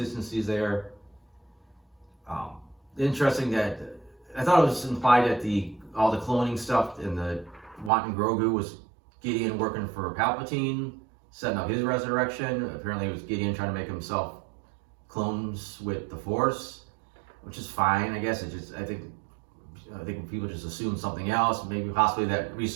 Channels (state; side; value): drops out; left; at 7.9 s